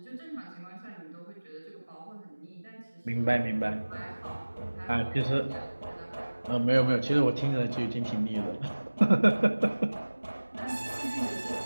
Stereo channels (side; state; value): both; inverted; correlation -1.00